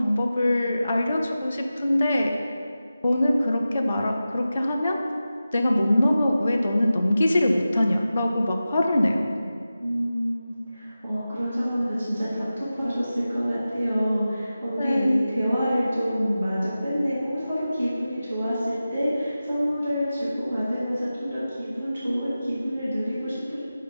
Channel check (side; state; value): both; inverted; correlation -0.94